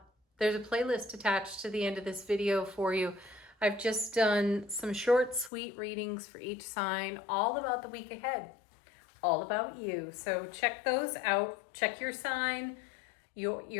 a playlist attached to the end of this video for you. I've just done some short, sweet readings for each sign, all about the week ahead, all about you. So check those out. Check your sign,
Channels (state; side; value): drops out; right; at 5.5 s